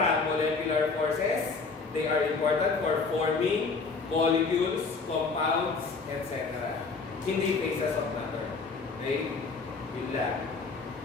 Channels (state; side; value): quieter; right; 4.4 dB